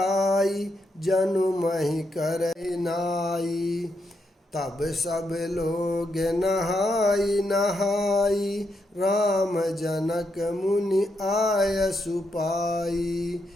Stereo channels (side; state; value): both; normal; correlation 0.81